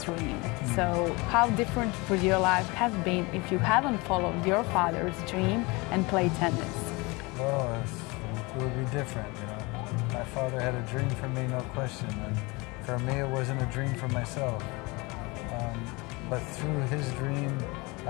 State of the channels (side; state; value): right; quieter; 25.5 dB